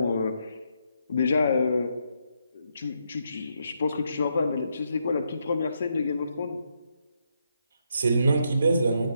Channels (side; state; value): both; inverted; correlation -0.79